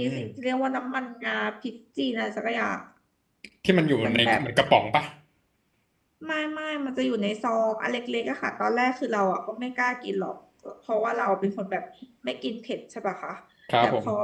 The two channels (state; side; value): identical; both; correlation 1.00